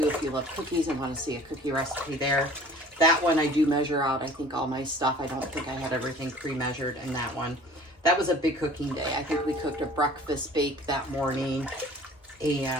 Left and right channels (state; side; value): normal; both; correlation 0.47